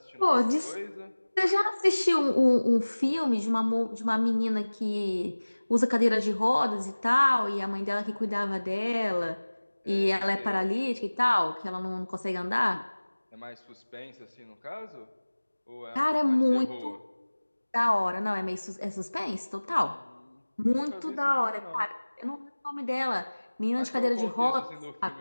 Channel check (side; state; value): both; inverted; correlation -1.00